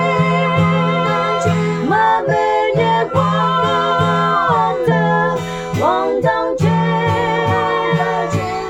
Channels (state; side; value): identical; both; correlation 1.00